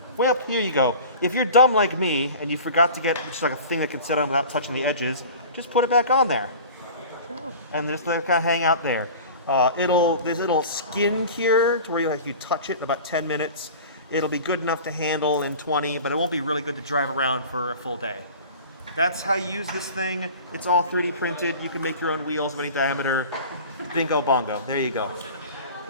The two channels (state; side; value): inverted; both; correlation -0.39